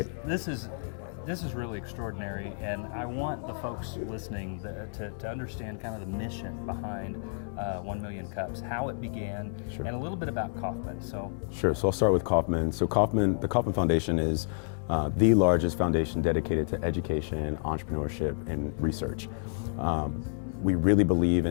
This is really extraordinary, and I want the folks listening to understand kind of the mission behind 1 million cups, how it began, and a little bit about Kauffman. Sure. So I'll start with Kauffman. So the Kauffman Foundation is the largest foundation dedicated to education, entrepreneurship, and research. We really believe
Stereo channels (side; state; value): right; silent; digital silence